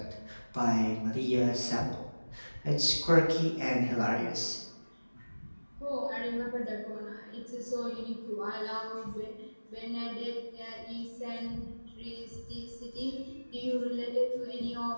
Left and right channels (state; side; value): inverted; both; correlation -1.00